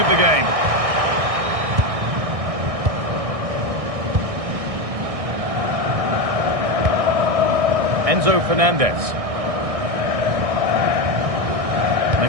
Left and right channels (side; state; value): left; late; 1.6 ms